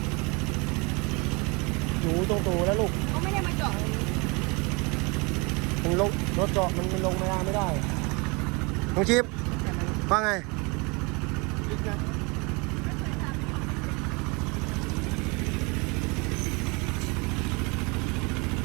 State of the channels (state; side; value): quieter; left; 28.4 dB